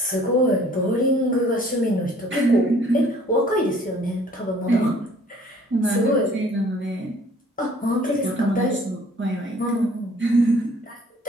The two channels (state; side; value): normal; both; correlation 0.56